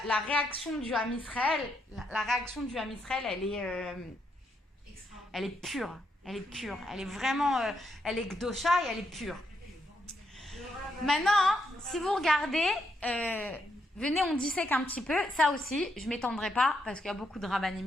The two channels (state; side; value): normal; both; correlation 0.78